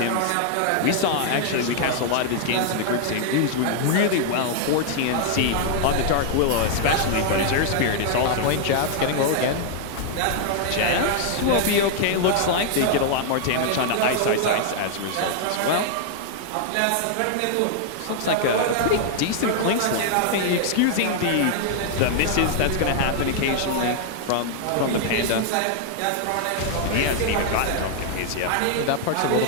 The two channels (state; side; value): different; both; correlation 0.00